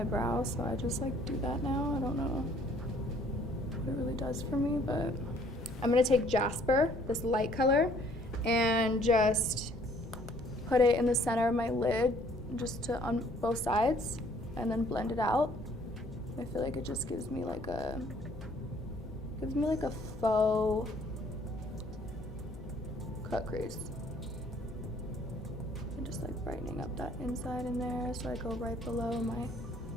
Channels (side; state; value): both; normal; correlation 0.60